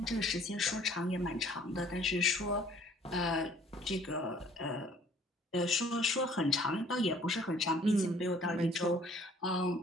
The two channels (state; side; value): normal; both; correlation 0.56